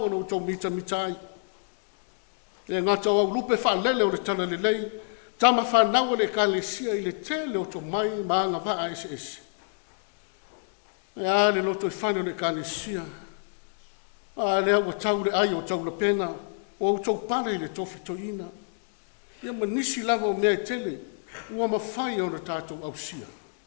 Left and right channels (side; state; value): right; silent; digital silence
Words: anu tau mita ai. E ngā tau au lupe whalele o le tala le lei, tama whanau le ka le sia i le tele o tau mai ma ngā waa ese. E a le loto i whanu le ka le sia. A le au tau le ai o tau le pena, o au tau pare le tofi toina. Ia manisi lava o mea i tele, ua mawhai o na tātou au sia.